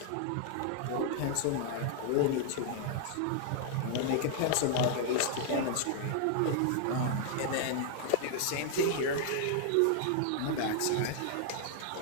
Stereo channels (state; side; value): different; both; correlation 0.00